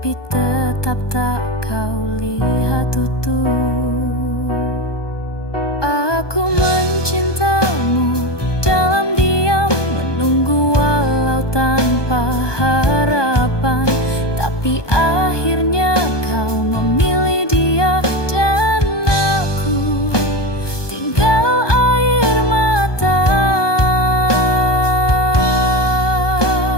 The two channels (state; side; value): late; right; 1.2 ms